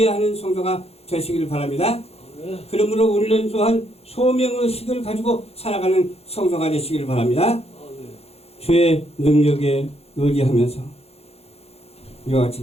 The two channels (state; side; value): late; right; 0.29 ms